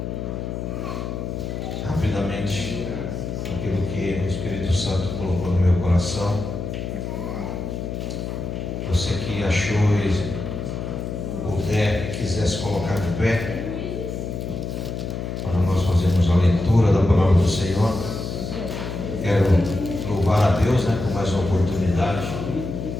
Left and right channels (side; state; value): left; noise; hum, 5 dB below the sound